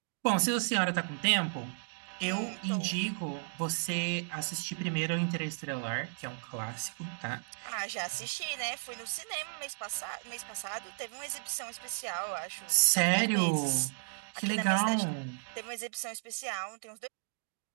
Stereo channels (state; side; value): silent; left; digital silence